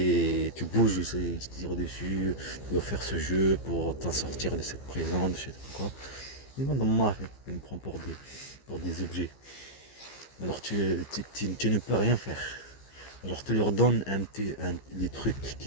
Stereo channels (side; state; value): right; late; 15 ms